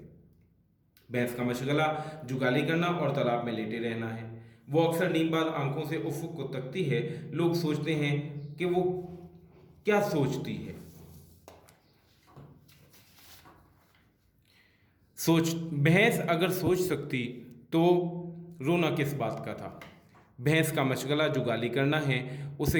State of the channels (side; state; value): both; identical; correlation 1.00